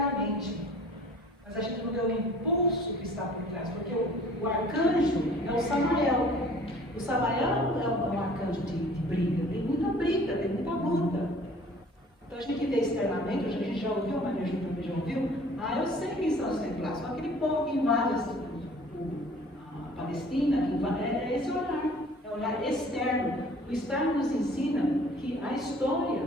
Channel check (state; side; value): normal; both; correlation 0.51